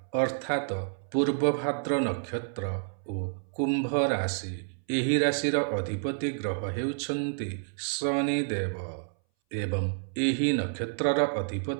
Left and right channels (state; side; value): silent; left; 58 dB below the other